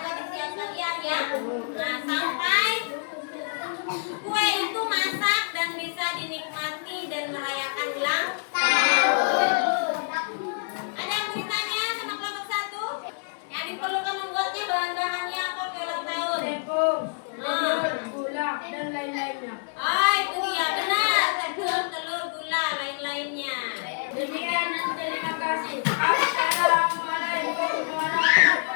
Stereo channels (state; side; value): silent; right; 60 dB below the other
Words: disiapkan ya. Nah, sampai kue itu masak dan bisa dinikmati dan merayakan ulang tahun. Ada yang mau ditanya sama kelompok 1? Yang diperlukan membuatnya bahan-bahannya apa kue ulang tahun? Tepung, telur, gula, dan lain-lainnya. Oh, itu dia benar. Tepung, telur, gula, lain-lainnya. Demikian dan terima kasih. Assalamualaikum